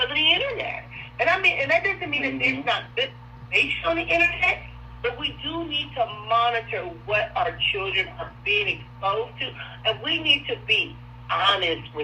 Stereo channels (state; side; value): identical; both; correlation 1.00